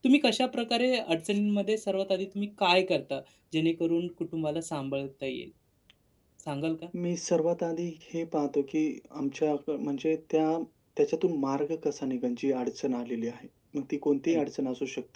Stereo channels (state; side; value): identical; both; correlation 1.00